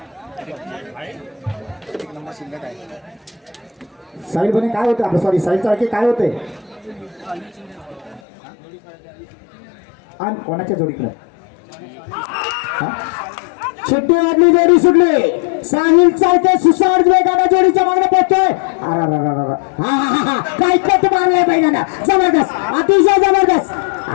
साहिल बने काय होते आपलं सॉरी साहिल चाळके काय होते आणि कोणाच्या जोडीकडे शिट्टी वाजली जोडी सुटली साहिल चाळके सुसाड वेगाने जोडीच्या मागणे पोहोचतोय. काय कट मारलाय बैलांना जबरदस्त अतिशय जबरदस्त.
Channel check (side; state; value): right; drops out; at 8.2 s